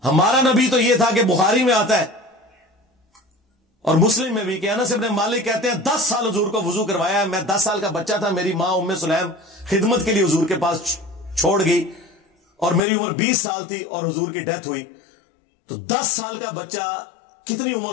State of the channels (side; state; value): right; drops out; at 12.8 s